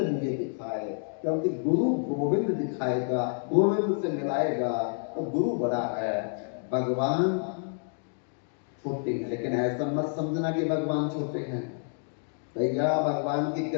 मुझे दिखाए। क्योंकि गुरु गोविंद दिखाएगा, गोविंद से मिलाएगा, तो गुरु बड़ा है, भगवान छोटे हैं। लेकिन ऐसा मत समझना कि भगवान छोटे हैं। भैया भगवान की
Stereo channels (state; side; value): silent; right; 59 dB below the other